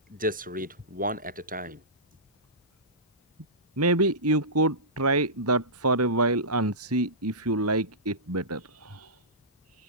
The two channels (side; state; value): both; normal; correlation -0.19